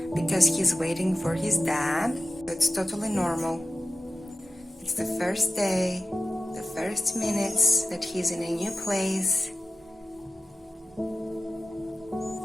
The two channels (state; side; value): normal; both; correlation 0.92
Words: because he's waiting for his dad. It's totally normal. It's the first day, the first minutes that he's in a new place.